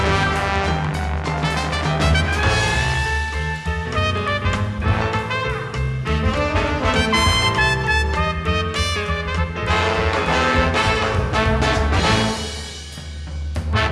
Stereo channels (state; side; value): identical; both; correlation 1.00